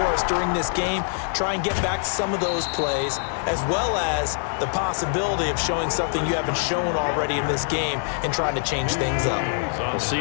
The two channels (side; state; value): right; silent; 63 dB below the other